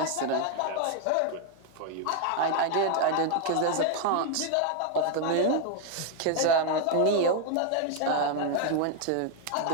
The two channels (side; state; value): both; different; correlation 0.01